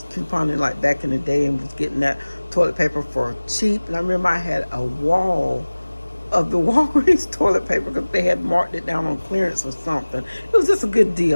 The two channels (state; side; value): inverted; both; correlation -1.00